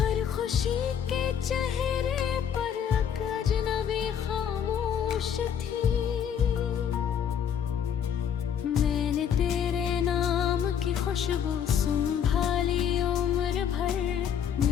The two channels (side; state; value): right; quieter; 8.4 dB